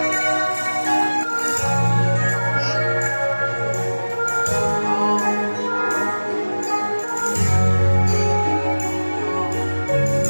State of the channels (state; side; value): inverted; both; correlation -1.00